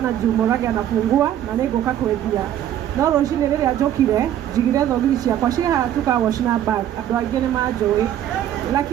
juu Murage anafungua na niguka kwendia no roshine riri ajokire jigire thogiri ciakwa ciha tukawashina bag andu aingi ni manjui,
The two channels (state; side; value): quieter; left; 11.2 dB